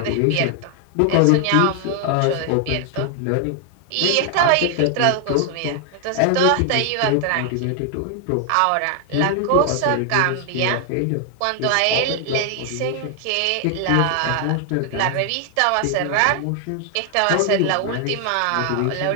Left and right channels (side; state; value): both; different; correlation 0.00